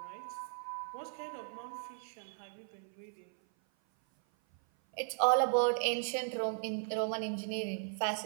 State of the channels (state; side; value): silent; left; 53 dB below the other